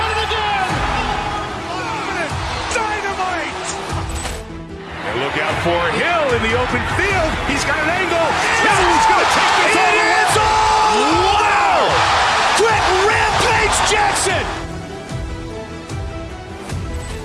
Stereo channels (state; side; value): identical; both; correlation 1.00